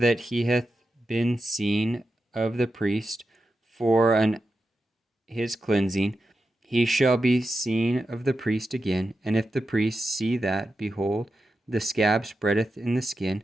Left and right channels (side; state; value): both; normal; correlation 0.90